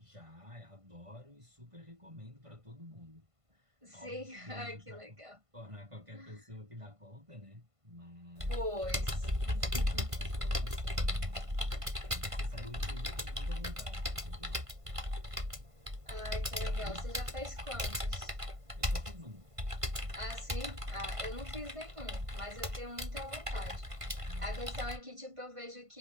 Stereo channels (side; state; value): left; late; 1.5 ms